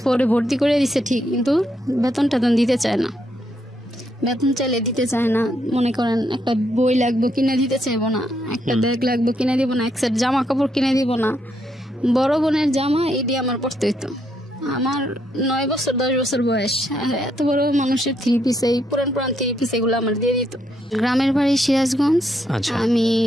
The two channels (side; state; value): both; normal; correlation 0.76